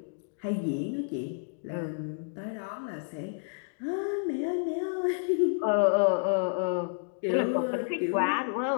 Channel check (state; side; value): silent; right; digital silence